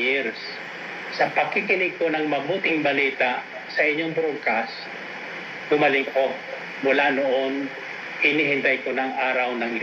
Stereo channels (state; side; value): identical; both; correlation 1.00